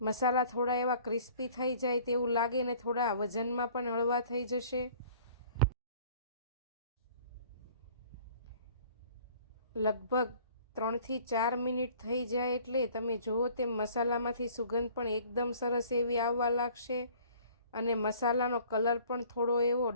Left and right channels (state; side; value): inverted; both; correlation -0.52